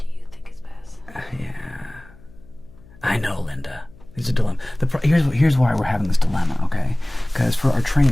you think is best? Yeah. I know, Linda. It's a dilemma. Here's why we're having this dilemma, okay? Because for our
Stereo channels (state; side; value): noise; left; hum, 24 dB below the sound